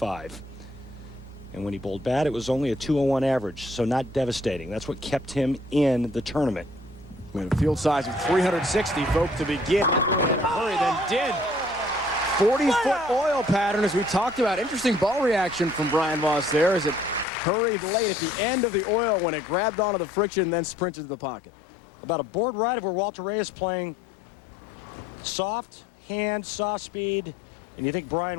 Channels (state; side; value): drops out; right; at 17.2 s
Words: And when he bowled bad, it was only a 201 average, so not devastating. That's what kept him in the tournament. We had a field size of 360, folks, to begin. That really had a hurry, then did. 40-foot oil pattern, as we talked about. Interesting ball reaction from Brian-Voss there as it hurried late at the end of the oil when it grabbed onto the friction and then sprinted to the pocket. About a board ride of where Walter Ray is playing soft hand, soft speed, and you think